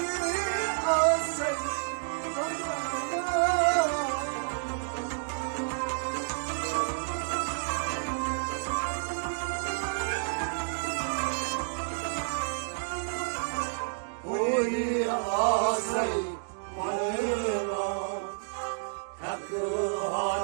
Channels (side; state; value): left; silent; digital silence